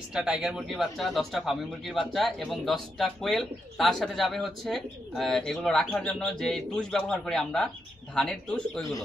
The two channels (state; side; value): normal; both; correlation 0.83